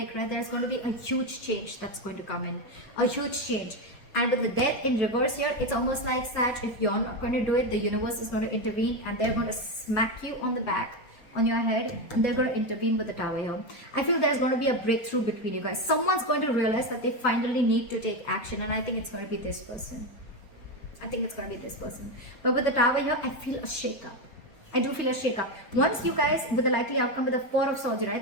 right, there's going to be a huge change that's going to come in, a huge change. And with the Death in reverse here, it's almost like, Sag, if you're not going to do it, the universe is going to intervene and they're going to smack you on the back, on your head, and they're going to intervene with the Tower here. I feel there's going to be a breakthrough between you guys. Someone's going to realize that they finally need to take action, and I think it's going to be this person. I think it's going to be this person. But with the Tower here, I feel a shake-up. I do feel a shake-up. Once you guys, with the likely outcome with the Four of Swords,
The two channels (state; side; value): late; right; 4.3 ms